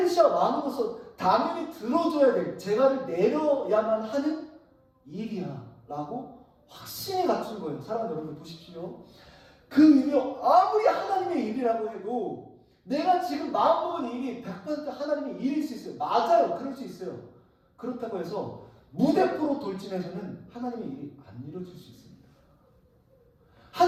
왕으로서 당연히 들어줘야 될, 재갈을 내려야만 하는 일이야 라고 확신이 갖춘 거예요. 사랑하는 여러분 보십시오. 그 일이 아무리 하나님의 일이라고 해도 내가 지금 마음먹은 일이 100% 하나님의 일일 수 있어요. 맞아요. 그럴 수 있어요. 그렇다고 해서 무대포로 돌진해서는 하나님의 일이 안 이루어질 수 있습니다.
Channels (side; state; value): both; identical; correlation 1.00